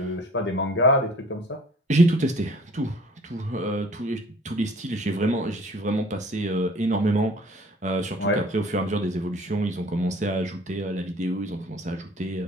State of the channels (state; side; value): normal; both; correlation 0.51